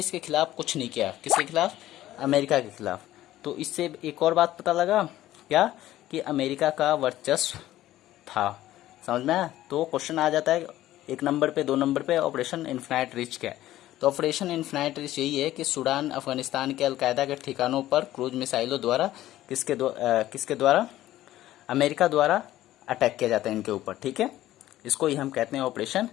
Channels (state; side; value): quieter; right; 14.4 dB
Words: खिलाफ कुछ नहीं किया। किसके खिलाफ? अमेरिका के खिलाफ। तो इससे एक और बात पता लगा क्या, कि अमेरिका का वर्चस्व था। समझ में आया? तो क्वेश्चन आ जाता है 1 नंबर पे, 2 नंबर पे, ऑपरेशन इन्फिनाइट रिच क्या है? तो ऑपरेशन इन्फिनाइट रिच यही है कि सूडान अफगानिस्तान के अलकायदा के ठिकानों पर क्रूज मिसाइलों द्वारा किसके द्वारा अमेरिका द्वारा अटैक किया जाता है इनके ऊपर। ठीक है, इसको ही हम कहते हैं ऑपरेशन